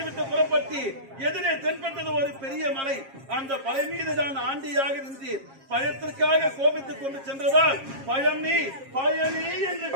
விட்டு புறப்பட்டு எதிரே தென்பட்டது ஒரு பெரிய மலை. அந்த மலை மீது தான் ஆண்டியாக நின்று பயத்திற்காக கோபித்துக் கொண்டு சென்றதால் பயணி பயணி என்று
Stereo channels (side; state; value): left; late; 7.4 ms